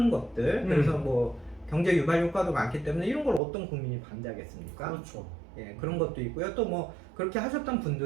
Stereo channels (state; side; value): drops out; left; at 3.4 s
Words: 것들, 그래서 경제 유발 효과도 많기 때문에 이런 걸 어떤 국민이 반대하겠습니까? 그렇죠. 예, 그런 것도 있고요. 또 그렇게 하셨던